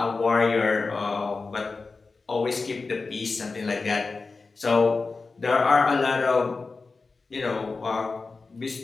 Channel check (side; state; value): right; quieter; 4.1 dB